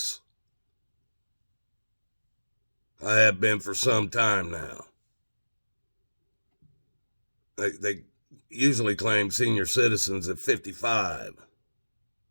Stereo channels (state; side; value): inverted; both; correlation -1.00